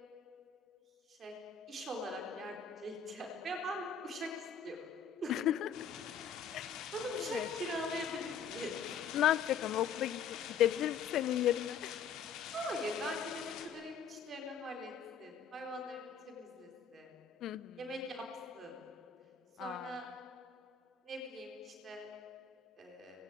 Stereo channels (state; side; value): quieter; right; 6.9 dB